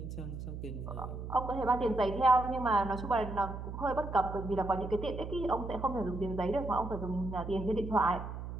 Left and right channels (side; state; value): right; noise; hum, 8 dB below the sound